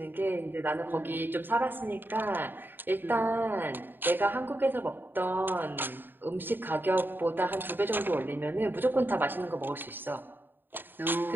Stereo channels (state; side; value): late; left; 0.095 ms